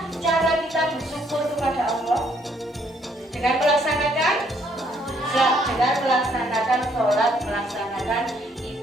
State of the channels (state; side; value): normal; both; correlation 0.67